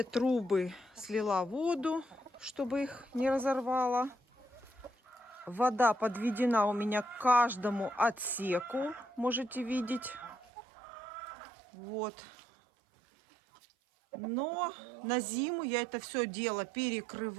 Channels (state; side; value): drops out; left; at 10.5 s